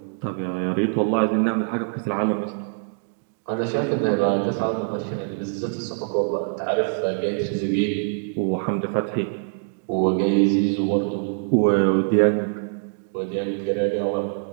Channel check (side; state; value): left; silent; 63 dB below the other